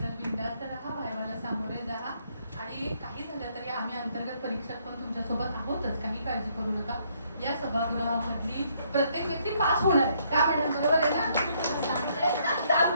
बिनधास्त राहा, वायवाला सामोरे जा आणि काही झालं तरी आम्ही अंतर्गत परीक्षक पण तुमच्यासोबत आहोतच, काही काळजी करू नका। या सभागृहामधली प्रत्येक व्यक्ती पास होणार आहे, त्या मॅडम बरोबर आहे ना?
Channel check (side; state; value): both; inverted; correlation -0.70